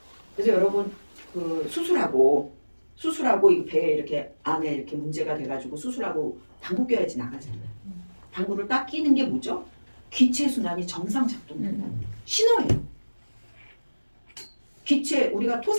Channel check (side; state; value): both; inverted; correlation -1.00